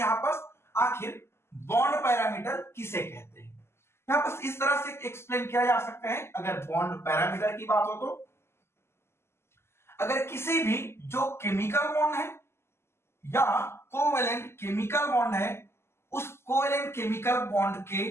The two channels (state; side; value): late; right; 0.12 ms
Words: पास आखिर बॉन्ड पैरामीटर किसे कहते हैं। यहां पास इस तरह से एक्सप्लेन किया जा सकता है, अगर बॉन्ड पैरामीटर की बात हो तो अगर किसी भी जो केमिकल बॉन्ड है या कोवेलेंट केमिकल बॉन्ड है, उस कोवेलेंट केमिकल बॉन्ड